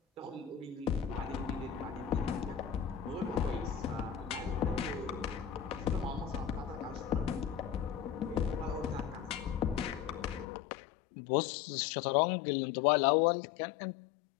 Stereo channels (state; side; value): drops out; right; at 10.5 s